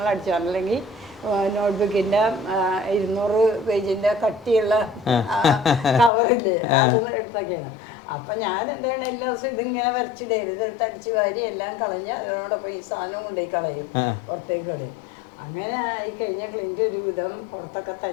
അടിച്ചു. അല്ലെങ്കിൽ നോട്ട്ബുക്കിന്റെ 200 പേജിന്റെ കട്ടിയുള്ള കവറില്ലേ, അത് എടുത്തൊക്കെയാണ്. അപ്പൊ ഞാൻ എന്താണ് എല്ലാ ദിവസവും ഇതിങ്ങനെ വരച്ചിടരുത്, ഇതെടുത്ത് അടിച്ചു വാരി എല്ലാം കളഞ്ഞ് അതിനോടൊപ്പം ഈ സാധനം കൊണ്ടുപോയി കളയും, പുറത്തേക്ക് കളയും. അങ്ങനെ ആയി കഴിഞ്ഞ ക്ലിന്റ് ഒരു വിധം പുറത്തൊക്കെ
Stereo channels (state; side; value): drops out; right; at 6.1 s